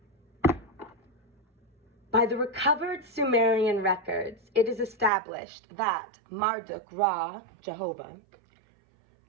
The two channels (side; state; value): left; drops out; at 5.1 s